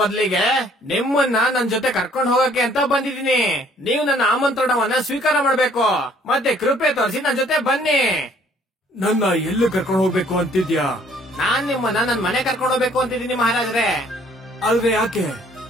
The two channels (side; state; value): both; normal; correlation 0.60